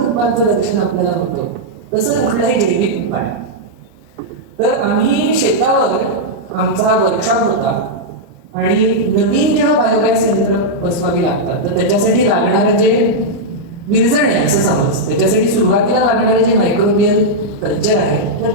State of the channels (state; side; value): late; left; 30 ms